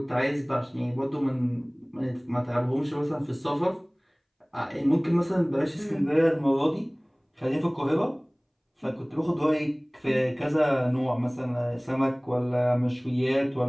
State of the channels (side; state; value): both; identical; correlation 1.00